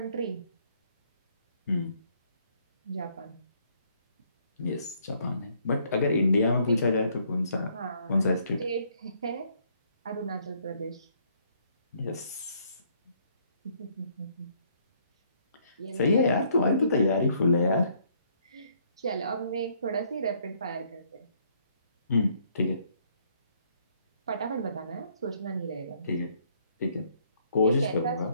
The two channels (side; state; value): both; inverted; correlation -0.67